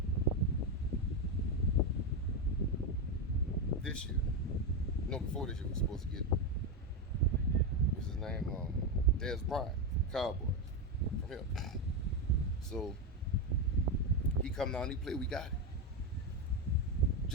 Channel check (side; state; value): both; normal; correlation 0.10